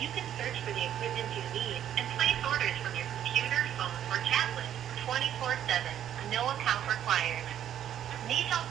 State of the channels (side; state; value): left; quieter; 10.5 dB